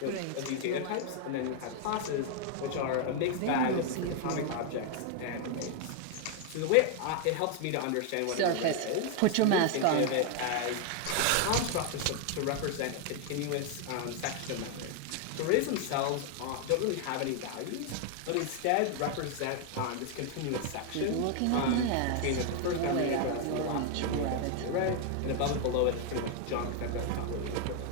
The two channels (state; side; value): different; both; correlation 0.00